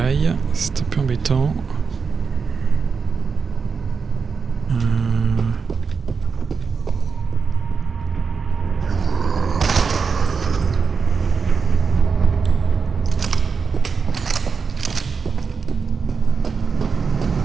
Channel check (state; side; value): quieter; left; 5.4 dB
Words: c'est un peu embêtant.